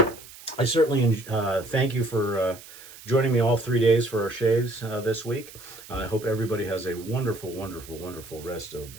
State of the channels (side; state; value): right; noise; hiss, 18 dB below the sound